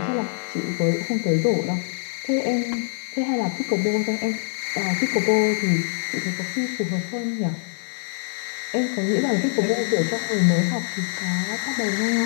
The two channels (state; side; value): silent; right; digital silence